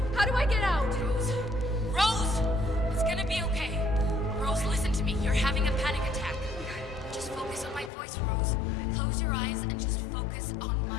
How do I get out? Rose! It's gonna be okay. my voice, Rose. Close your eyes and just focus on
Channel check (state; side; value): drops out; right; at 7.9 s